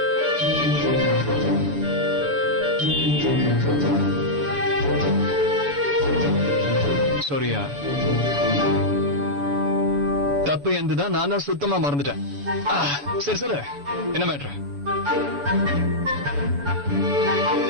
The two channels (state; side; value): late; left; 7.0 ms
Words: சாரியா, தப்பு எந்துதான். நான் தான் சுத்தமா மறந்துட்டேன். சரி சொல்லு, என்ன மேட்ரு?